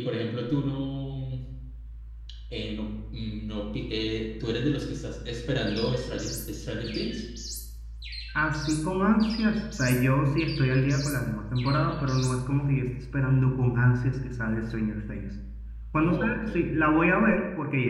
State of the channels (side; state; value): both; identical; correlation 1.00